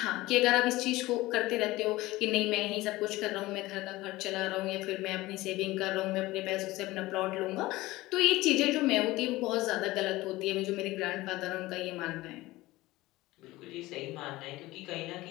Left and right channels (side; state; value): right; quieter; 18.8 dB